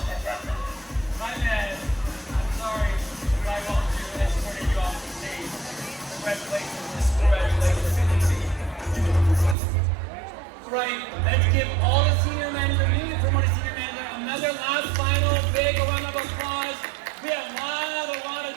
my bad. I'm sorry if I want to escort you off the stage. Congratulations. Right, let's give all the senior managers, newly promoted senior managers, another last final big round of applause. We have a lot of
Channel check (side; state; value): left; drops out; at 9.6 s